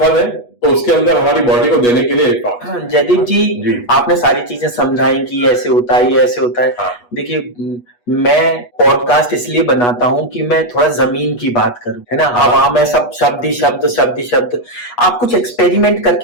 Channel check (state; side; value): late; right; 8.3 ms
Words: है, तो उसके अंदर हमारी बॉडी को देने के लिए इलेक्ट्रॉन। जयदीप जी, आपने सारी चीजें समझाई कि ऐसे होता है, ये ऐसे होता है। हाँ। देखिए, मैं पॉडकास्ट इसलिए बनाता हूं कि मैं थोड़ा जमीन की बात करूं, है ना। हवा में सब शब्द ही शब्द। आप कुछ एक्सपेरिमेंट